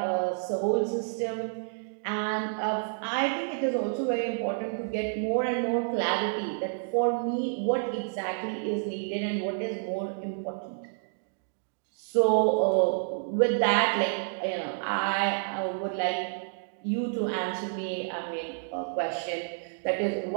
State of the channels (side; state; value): left; silent; digital silence